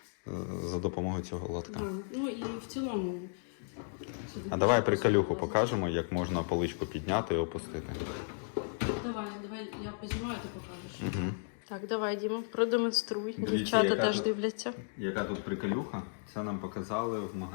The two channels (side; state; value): right; silent; digital silence